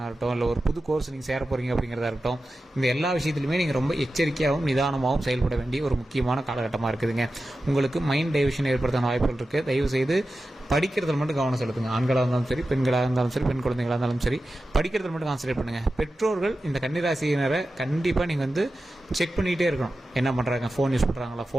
இருக்கட்டும், இல்லை ஒரு புது கோர்ஸ் நீங்கள் சேர போகிறீங்க அப்படிங்கிறதா இருக்கட்டும், இந்த எல்லா விஷயத்துலையுமே நீங்கள் ரொம்ப எச்சரிக்கையாகவும் நிதானமாகவும் செயல்பட வேண்டிய ஒரு முக்கியமான காலகட்டமாக இருக்குதுங்க. உங்களுக்கு மைண்ட் டைவர்ஷன் ஏற்படுத்தான வாய்ப்புகள் இருக்குது. தயவு செய்து படிக்கிறதுல மட்டும் கவனம் செலுத்துங்க. ஆண்களாக இருந்தாலும் சரி, பெண்களாக இருந்தாலும் சரி, பெண் குழந்தைகளாக இருந்தாலும் சரி, படிக்கிறதுல மட்டும் கான்சன்ட்ரேட் பண்ணுங்கள். பெற்றோர்கள் இந்த கன்னிராசியினரை கண்டிப்பாக நீங்கள் செக் பண்ணிகிட்டே இருக்கணும். என்ன பண்ணுறாங்க, ஃபோன் யூஸ் பண்ணுறாங்களா,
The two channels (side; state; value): both; normal; correlation 0.93